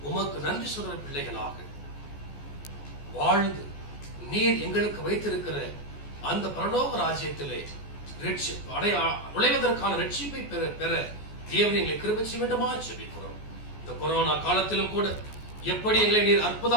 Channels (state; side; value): late; right; 14 ms